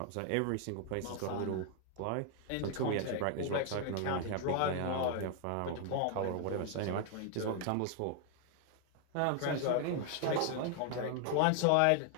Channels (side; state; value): both; different; correlation 0.00